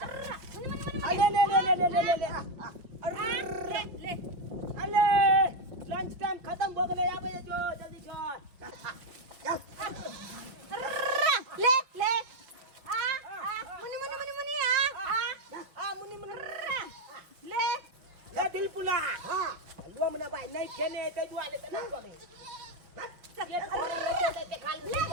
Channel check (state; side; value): late; left; 5.5 ms